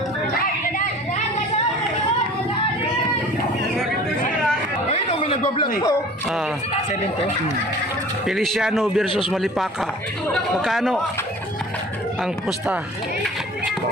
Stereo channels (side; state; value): both; normal; correlation 0.45